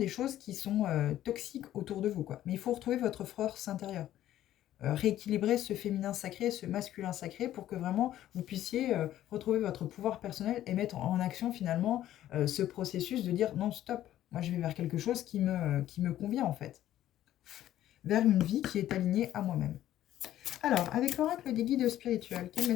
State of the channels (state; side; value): quieter; right; 12.8 dB